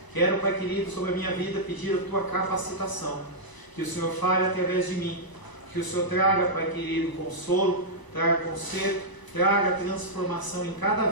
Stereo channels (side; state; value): right; late; 1.0 ms